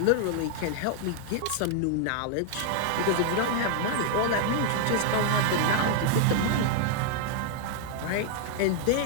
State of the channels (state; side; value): different; both; correlation 0.00